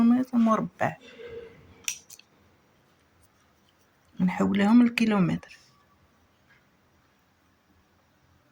مربع. نحولهم للكيلومتر.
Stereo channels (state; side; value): identical; both; correlation 1.00